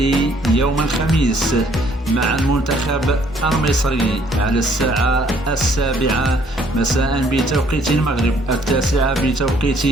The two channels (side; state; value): both; normal; correlation 0.63